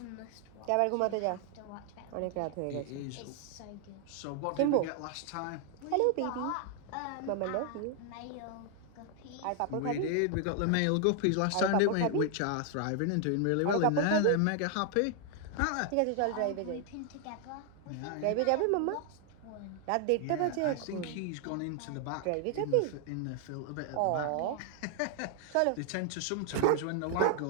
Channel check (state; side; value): different; both; correlation 0.00